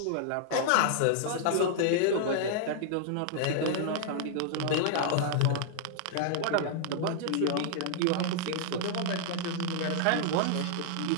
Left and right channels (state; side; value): different; both; correlation -0.01